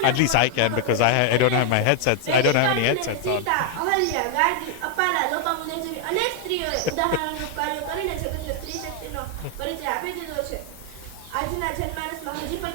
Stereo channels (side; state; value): both; different; correlation 0.00